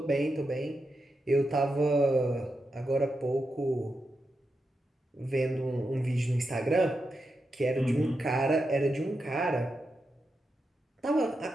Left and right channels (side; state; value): both; normal; correlation 0.87